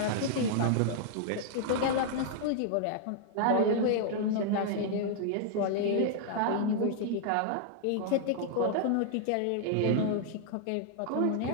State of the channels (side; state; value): both; different; correlation -0.01